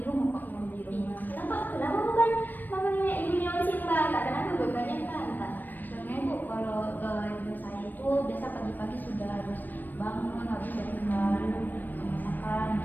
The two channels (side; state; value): right; late; 0.089 ms